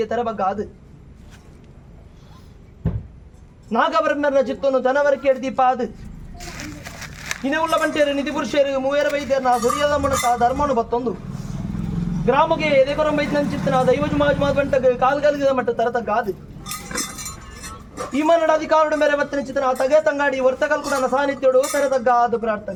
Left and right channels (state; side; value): identical; both; correlation 1.00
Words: ತರಬಗ್ಗಾದು ನಾಗಬ್ರಹ್ಮರ ಚಿತ್ತನು ಜನವರಕ್ಕೆ ದೀಪಾದು ಇನೇ ಉಳ್ಳ ಬಂಟೇರು ನಿಧಿ ಪುರುಷರು ಮೂವೇರ ವೈದ್ಯರನ್ನ ಸುರಿಯದ ಮುಣಕ ಧರ್ಮನು ಬತ್ತೊಂದು ಗ್ರಾಮಕ್ಕೆ ಎದೆಕೊರಂಬೈತಿನ ಚಿತ್ತನ ದೈವಜು ಮಾಜ್ ಬಂಟಗೆ ಕಾಲ್ಗಲ್ಗಿದ ಮಟ್ಟ ತರತಗ್ಗಾದು ಈ ಮನ್ನಡ ಅಧಿಕಾರಡು ಮೇರೆ ಬತ್ತಿನ ಚಿತ್ತನ ತಗೆ ತಂಗಾಡಿ ವರ್ತಕಲ್ ಕೂಡ ಸಾನ್ನಿಧ್ಯೋಡು ತರತಗ್ಗಾದು